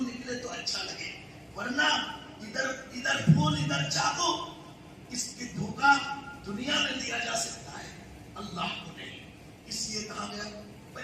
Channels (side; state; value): both; identical; correlation 1.00